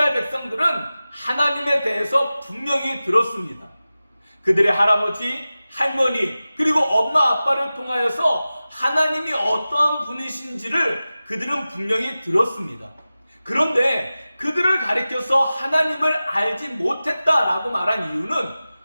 백성들은 하나님에 대해서 분명히 들었습니다. 그들의 할아버지, 할머니, 그리고 엄마, 아빠를 통하여서 하나님이 어떠한 분이신지를 그들은 분명히 들었습니다. 그런데 그들을 가리켜서 하나님을 알지 못했다라고 말한 이유는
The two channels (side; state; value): both; inverted; correlation -0.96